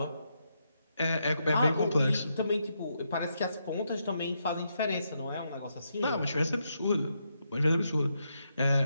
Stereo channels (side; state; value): both; inverted; correlation -0.81